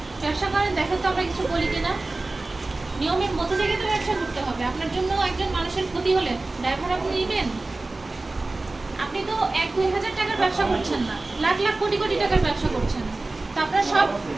ব্যবসা করেন, দেখেন তো আমরা কিছু বলি কিনা। নিয়মের মধ্যে থেকে তো ব্যবসা করতে হবে। আপনার জন্য একজন মানুষের ক্ষতি হলে ড্রাইভার আপনি নেবেন? আপনি তো 1-2 হাজার টাকার ব্যবসা করছেন না, লাখ লাখ কোটি কোটি টাকার ব্যবসা করছেন। তো আপনার সব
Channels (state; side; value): quieter; left; 3.2 dB